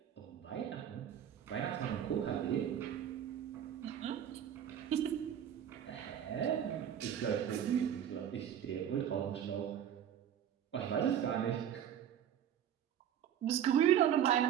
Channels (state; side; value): quieter; left; 9.6 dB